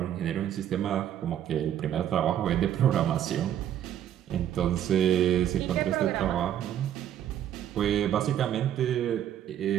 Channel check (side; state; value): left; quieter; 10.7 dB